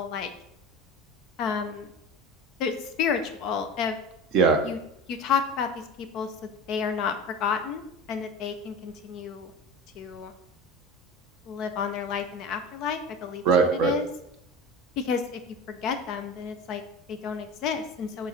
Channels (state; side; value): normal; both; correlation 0.31